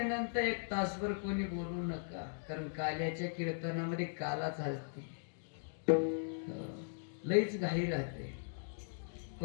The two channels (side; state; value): right; silent; digital silence